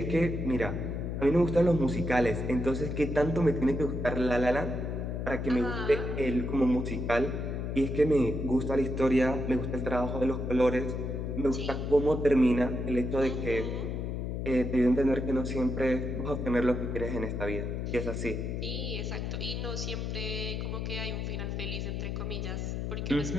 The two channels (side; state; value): left; noise; hum, 3 dB below the sound